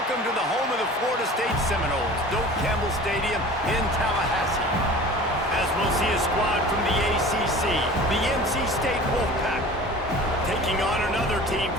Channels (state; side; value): normal; both; correlation 0.41